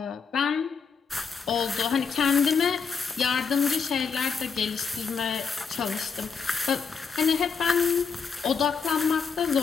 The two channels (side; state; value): right; quieter; 5.7 dB